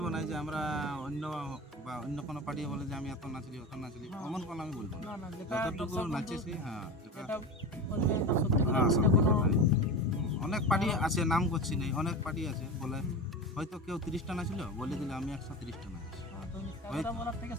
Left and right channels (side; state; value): both; normal; correlation 0.27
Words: না, যে আমরা অন্য কোনো পার্টি বলে যে আমি এত নাচলি অত নাচলি, এমন কোনো আমি বলবো না। না, যেটা যতটুকু নাচেছি, যেটা বলবেন তা সত্যি কথা, সত্যি কোনো কথাই। অনেক পার্টি আছে, নাম করছি নেই, অনেক পার্টি আছে বলে হয়তো কেউ 30টা নাচলো, বলে দিলে আমি 130টা নাচছি। কথা বলার থেকে